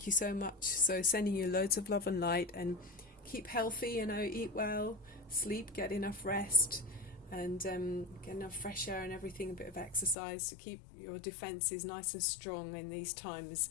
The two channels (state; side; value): drops out; right; at 10.2 s